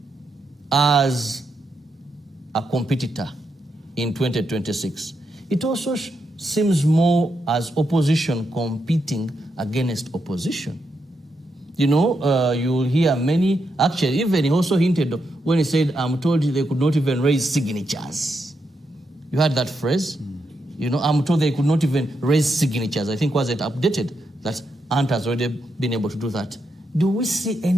as a competitor in 2026, it also seems more as opposition competing against opposition. You know, you'll hear many, actually, even he also hinted when he said, I'm told they could not even raise signatures. You heard that phrase? You know, I'm told they could not even raise signatures. I think was it updated that Ant has already been able to do that. Do we see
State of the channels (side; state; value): both; normal; correlation 0.83